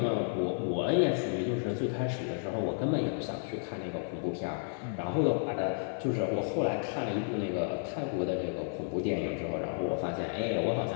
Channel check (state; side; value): silent; right; 56 dB below the other